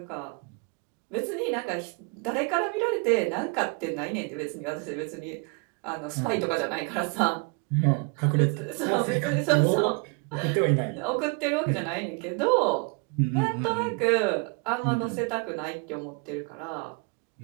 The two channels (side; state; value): left; quieter; 33.2 dB